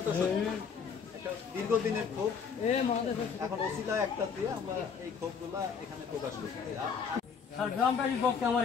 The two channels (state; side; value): quieter; right; 6.2 dB